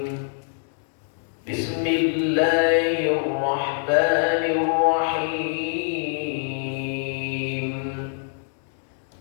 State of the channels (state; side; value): silent; right; digital silence